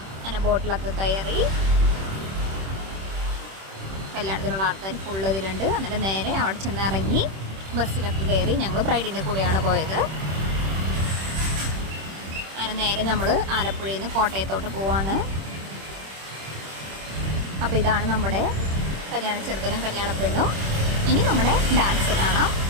അങ്ങനെ ബോട്ടിലൊക്കെ കയറി കല്യാണത്തിനുള്ള ആൾക്കാർ ഫുള്ള് ഇതിലുണ്ട്. എന്നിട്ട് നേരെ അവിടെ ചെന്ന് ഇറങ്ങി ബസ്സിലൊക്കെ കയറി. ഞങ്ങൾ ബ്രൈഡിൻ്റെ കൂടെയാണ് പോയത്. അങ്ങനെ നേരെ നമ്മൾ ആലപ്പുഴയിൽ നിന്ന് കോട്ടയത്തോട്ട് പോവാണ്. അപ്പോൾ ഇതാണ് നമ്മുടെ കല്യാണ ചെറുക്കനും കല്യാണ പെണ്ണും. ഇനി നമ്മുടെ ഡാൻസ് കാണാം,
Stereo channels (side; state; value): left; late; 26 ms